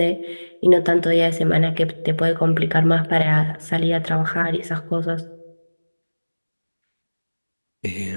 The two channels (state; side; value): inverted; both; correlation -1.00